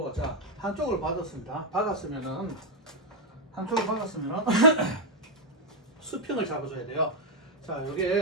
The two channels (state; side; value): normal; both; correlation 0.00